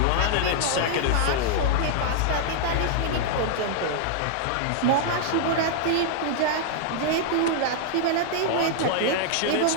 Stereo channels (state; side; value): different; both; correlation -0.01